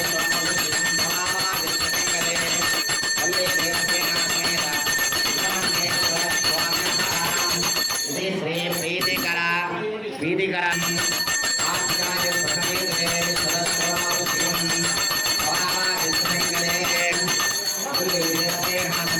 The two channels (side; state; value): both; identical; correlation 1.00